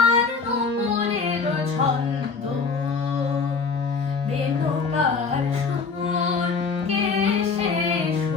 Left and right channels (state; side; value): quieter; right; 5.0 dB